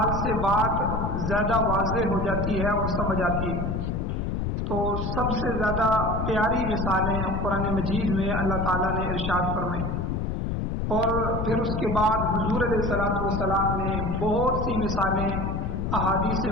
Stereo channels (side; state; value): left; noise; rumble, 1 dB below the sound